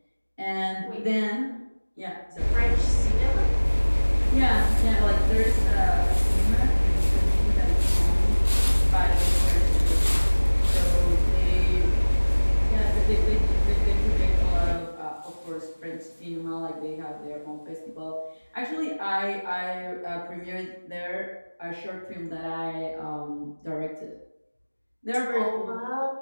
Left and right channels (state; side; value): inverted; both; correlation -1.00